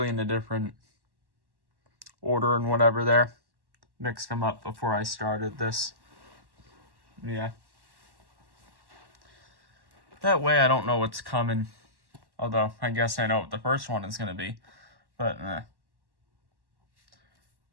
in a different order and whatever there. Mixed them up before I started this. Yeah. That way I don't know what's coming. Although, I guess I know what the first one is going to be. But,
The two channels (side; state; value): left; late; 1.1 ms